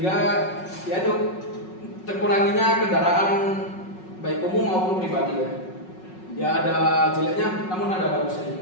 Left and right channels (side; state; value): right; late; 5.4 ms